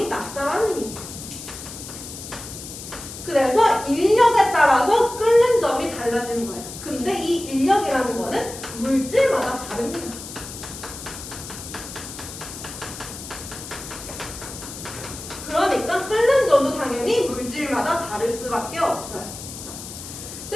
낮다라는 힘. 그래서 인력에 따라서 끓는 점이 달라지는 거예요. 근데 이 인력이라는 거는 물질마다 다릅니다. 그러니까 끓는 점도 당연히 물질마다 다를 수밖에 없어요.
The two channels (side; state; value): left; noise; hiss, 11 dB below the sound